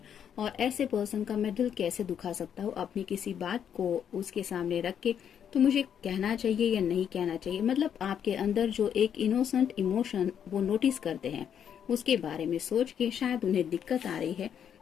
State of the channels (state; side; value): quieter; right; 8.6 dB